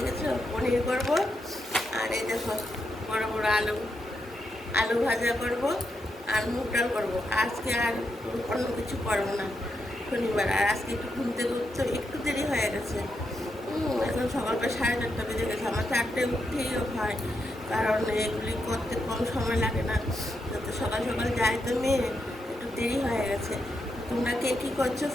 আছে? পনির করবো। আর এই দেখো বড় বড় আলু ভাজা করবো আর মুগ ডাল করবো। আজকে আর অন্য কিছু করবো না, শনিবার। আর আজকে একটু ঘুম থেকে উঠতে একটু দেরি হয়ে গেছে। এখন সকালবেলা 4:30 বেজে গেছে। আমার 4টায় উঠতেই হয়, কারণ এগুলি করতে কম সময় লাগে না। তো সকাল সকাল যাই তো মেয়ে, একটু দেরি হয়ে গেছে। তোমরা কে কী করছো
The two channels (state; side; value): normal; both; correlation 0.83